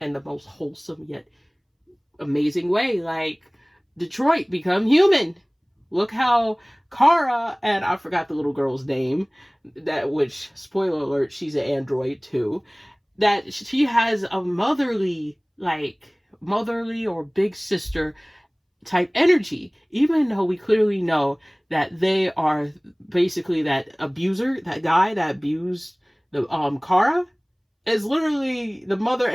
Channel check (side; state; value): both; identical; correlation 1.00